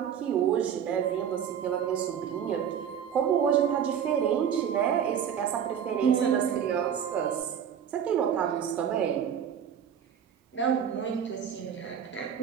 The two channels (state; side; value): quieter; left; 8.5 dB